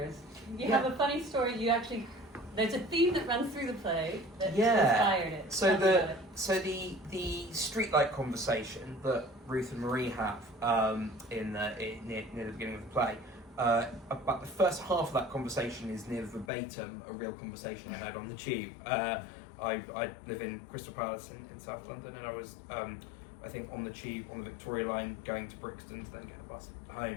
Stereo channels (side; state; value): right; drops out; at 16.5 s